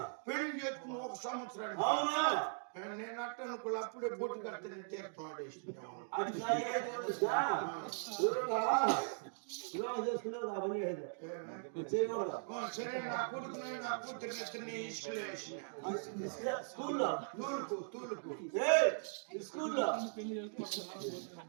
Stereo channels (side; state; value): left; silent; digital silence